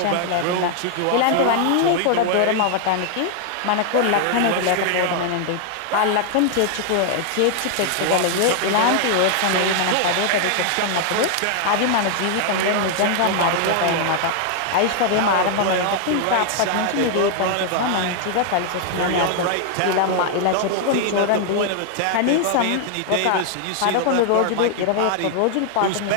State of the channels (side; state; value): both; different; correlation 0.00